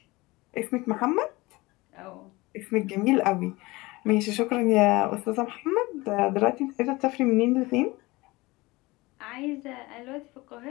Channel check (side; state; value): right; quieter; 21.9 dB